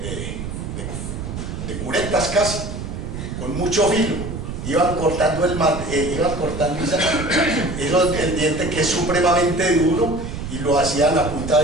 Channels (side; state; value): right; noise; rumble, 7 dB below the sound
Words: curetas casi, con mucho filo. Iban cortando el diente, que es supremamente duro, y lo hacían a punta